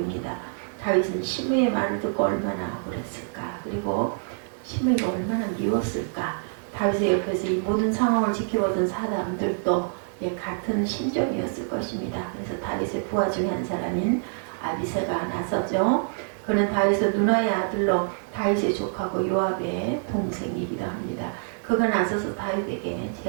다윗은 시므이의 말을 듣고 얼마나 억울했을까. 그리고 시므이가 얼마나 미웠을까. 다윗의 옆에서 이 모든 상황을 지켜보던 사람들도 같은 심정이었을 것입니다. 그래서 다윗의 부하 중에 한 사람인 아비새가 나서죠. 그는 다윗의 누나의 아들로 다윗의 조카고 요압의 동생이기도 합니다. 그가 나서서 다윗에게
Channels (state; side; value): silent; left; digital silence